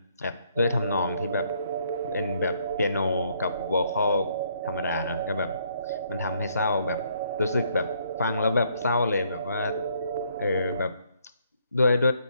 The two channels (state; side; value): inverted; both; correlation -0.68